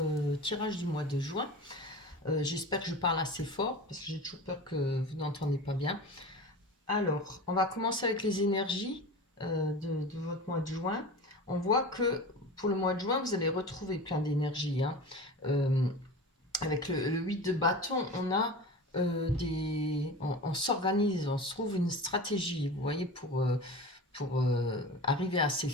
tirage du mois de juin. J'espère que je parle assez fort parce que j'ai toujours peur que vous n'entendez pas bien. Alors, on va commencer avec les énergies de votre mois de juin. On voit que pour le mois de juin, vous allez retrouver plein d'énergie. Avec le 8 de bâton, on a on s'organise, on se trouve une stratégie, vous voyez, pour arriver à ses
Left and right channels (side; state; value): both; normal; correlation 0.32